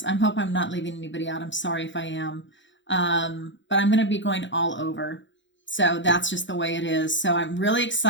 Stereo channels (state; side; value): late; right; 0.54 ms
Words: I hope I'm not leaving anybody out. I'm sorry if I am. But I'm going to be going all over. So that's just the way it is. So I'm really